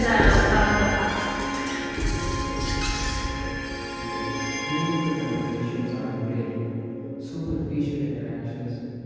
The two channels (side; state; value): both; identical; correlation 1.00